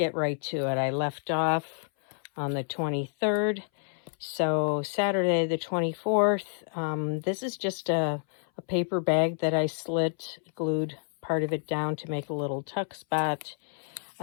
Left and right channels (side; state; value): right; silent; 59 dB below the other